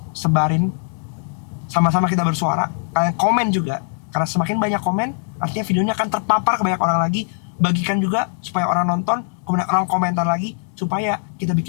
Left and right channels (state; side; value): silent; right; digital silence